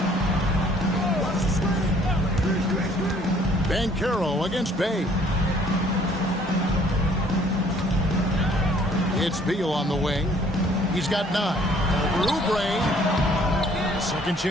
Banchero against Bay. It's Beal on the wing. He's got 9. Over Oubre. Second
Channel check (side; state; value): both; normal; correlation 0.59